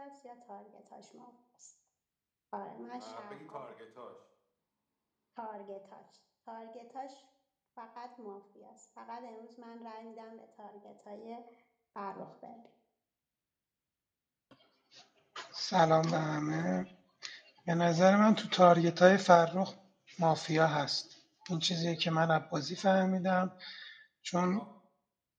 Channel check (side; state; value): both; identical; correlation 1.00